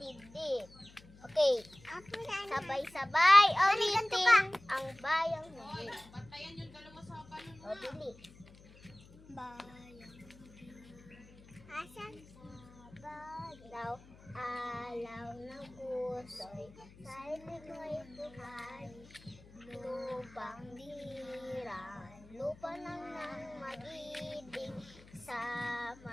Okay, Ako na. sabay-sabay ganito ulitin ang bayang magilid. O, dili. Bayang Asan? Daw, alaw ng puso'y sa liko'y buhay. Lupang diran, lupa lang ng mag-ibig sa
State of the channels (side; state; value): left; noise; hum, 22 dB below the sound